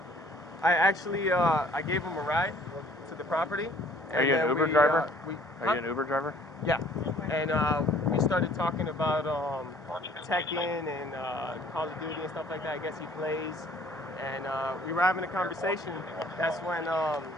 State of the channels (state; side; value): normal; both; correlation 0.56